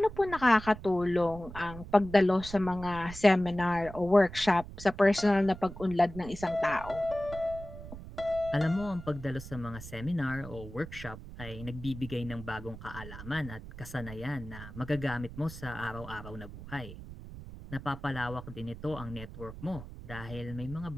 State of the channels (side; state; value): right; noise; rumble, 13 dB below the sound